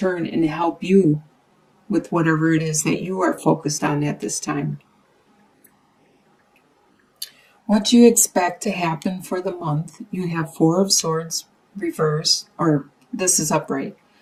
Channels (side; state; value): both; identical; correlation 1.00